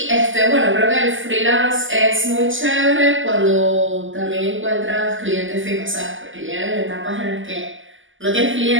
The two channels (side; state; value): left; late; 0.57 ms